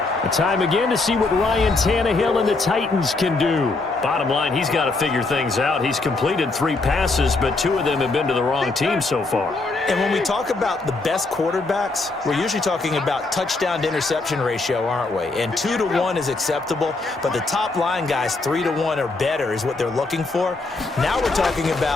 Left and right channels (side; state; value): right; quieter; 3.5 dB